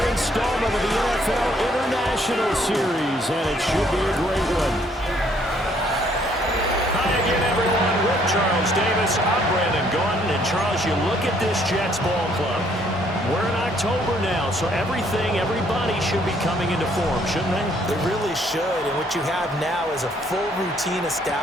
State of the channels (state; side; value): normal; both; correlation 0.65